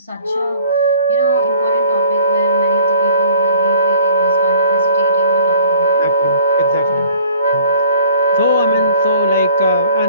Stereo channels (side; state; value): both; inverted; correlation -0.53